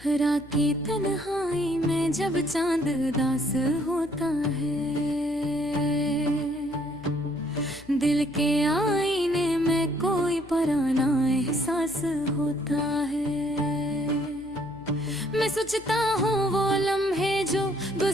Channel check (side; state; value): left; noise; hum, 21 dB below the sound